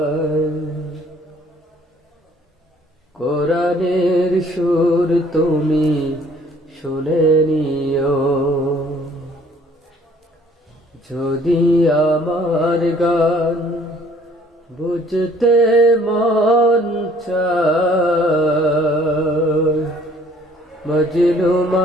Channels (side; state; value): both; normal; correlation 0.58